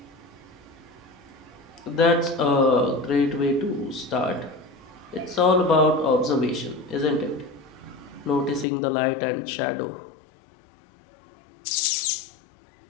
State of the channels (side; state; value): right; drops out; at 8.7 s